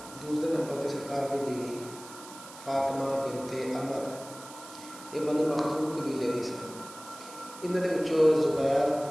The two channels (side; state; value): right; noise; hiss, 16 dB below the sound